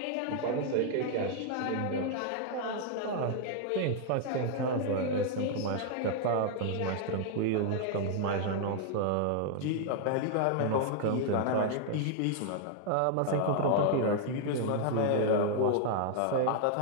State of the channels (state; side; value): different; both; correlation 0.00